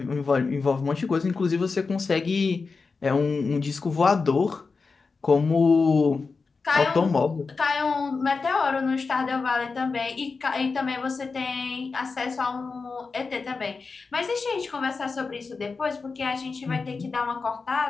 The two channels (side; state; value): right; quieter; 4.5 dB